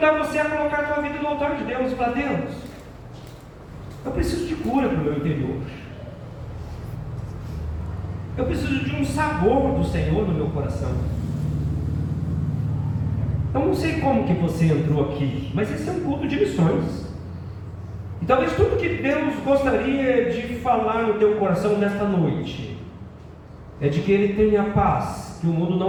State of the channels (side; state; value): both; identical; correlation 1.00